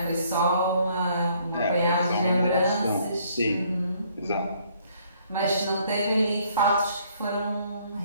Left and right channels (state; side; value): inverted; both; correlation -0.64